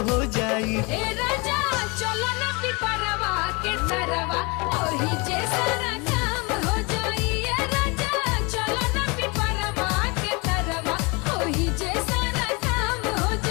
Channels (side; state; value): right; quieter; 28.2 dB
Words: हो जाई। ए राजा चलो ना पिपरवा के तरवा ओही जे सारा काम हो जाई। ए राजा चलो ना पिपरवा के तरवा ओही जे सारा काम हो